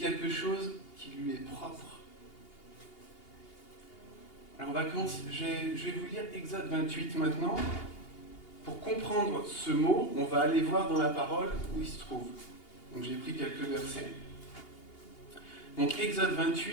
chose qui lui est propre. Alors on va commencer, je vais vous lire Exode 28 maintenant. Pour comprendre ce mot, on va aller voir dans la parole où il se trouve. Donc j'ai pris quelques versets. Donc Exode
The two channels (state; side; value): late; right; 2.8 ms